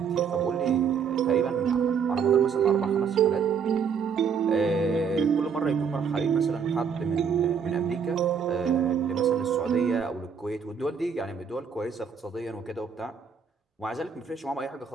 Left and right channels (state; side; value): quieter; left; 6.6 dB